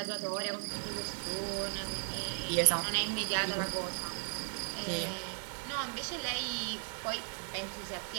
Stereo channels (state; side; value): silent; left; 54 dB below the other